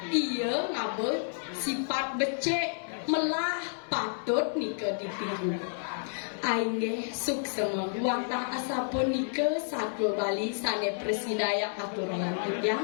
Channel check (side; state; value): right; silent; 58 dB below the other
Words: iya ngabe sifat becek melah patut nike ditiru Aingge suksema wantah asapun nike satu Bali sane presidaya aturan tiang